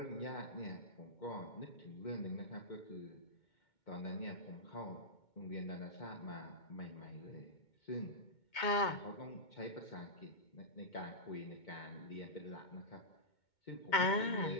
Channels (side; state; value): right; late; 2.2 ms